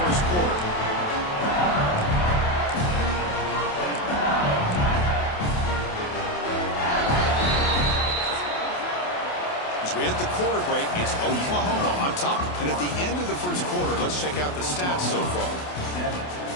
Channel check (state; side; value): late; right; 28 ms